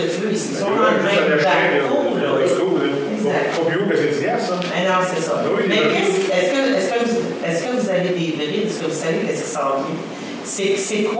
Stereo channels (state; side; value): identical; both; correlation 1.00